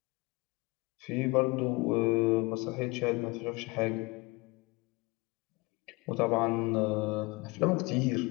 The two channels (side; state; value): right; quieter; 25.6 dB